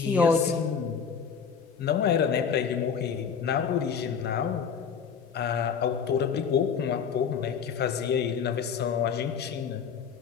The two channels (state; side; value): quieter; right; 6.7 dB